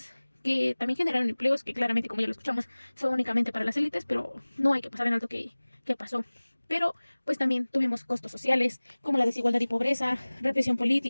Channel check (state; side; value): inverted; both; correlation -1.00